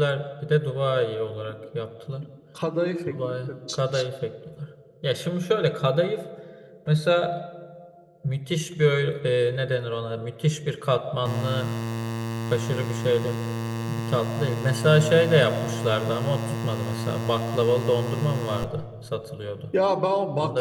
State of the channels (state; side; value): identical; both; correlation 1.00